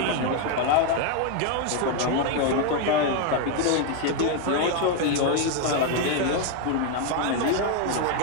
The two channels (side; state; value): both; different; correlation 0.01